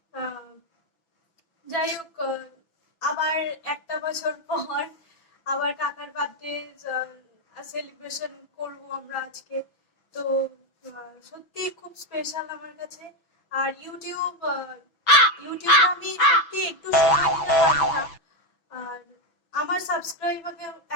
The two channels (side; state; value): right; late; 6.1 ms